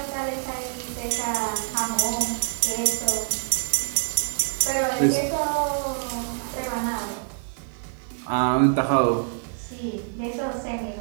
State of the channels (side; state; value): left; silent; digital silence